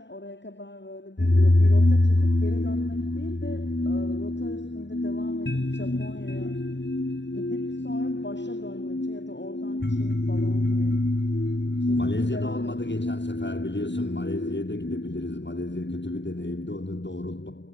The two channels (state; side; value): late; right; 0.52 ms